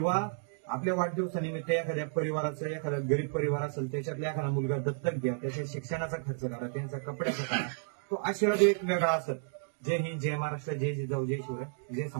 आपल्या वाढदिवसानिमित्त एखाद्या परिवाराचं, एखादा गरीब परिवार असेल त्याच्यातला एखादा मुलगा दत्तक घ्या, त्याच्या शिक्षणाचा खर्च करा, त्यांचा कपड्याचा करा. तो आशीर्वाद एक वेगळा असत. जय हिंद, जय महाराष्ट्र, जय जिजाऊ, जय शिवराय, जय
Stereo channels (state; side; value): silent; left; digital silence